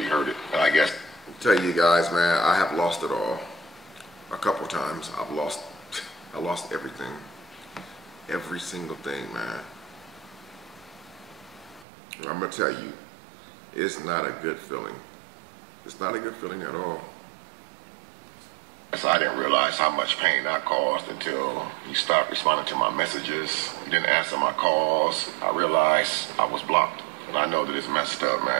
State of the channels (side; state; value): left; drops out; at 11.9 s